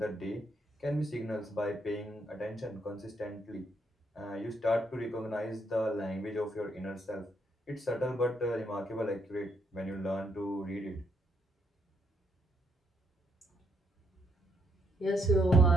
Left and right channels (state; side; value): normal; both; correlation 0.74